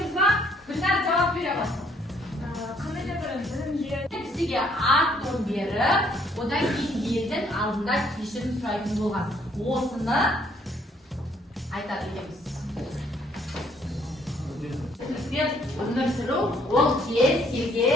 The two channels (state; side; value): normal; both; correlation 0.65